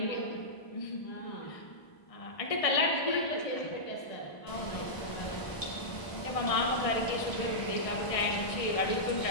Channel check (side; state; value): right; late; 1.0 ms